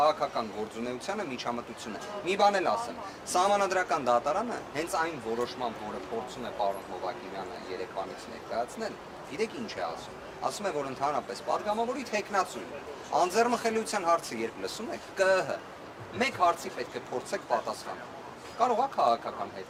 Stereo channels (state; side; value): identical; both; correlation 1.00